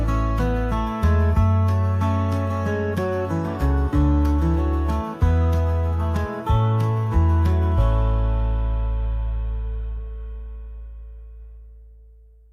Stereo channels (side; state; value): both; identical; correlation 1.00